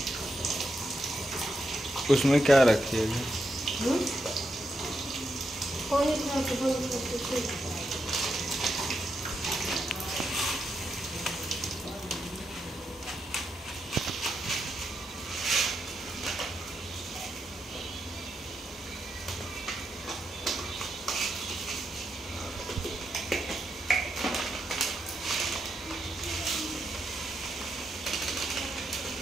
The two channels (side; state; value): both; normal; correlation 0.84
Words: उसमें क्या रखिएगा?